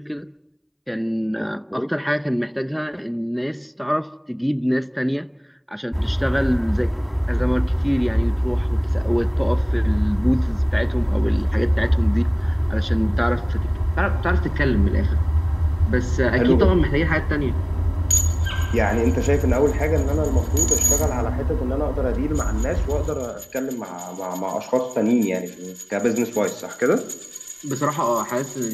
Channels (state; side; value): identical; both; correlation 1.00